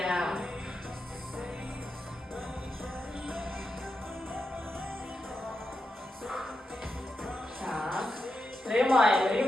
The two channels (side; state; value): both; normal; correlation 0.88